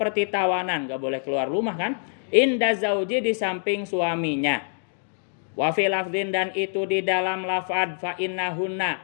tawanan, gak boleh keluar rumah kan. Inda zauji di samping suaminya. Wa fi lafdin dan itu di dalam lafad fa innahunna.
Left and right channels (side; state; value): right; silent; 62 dB below the other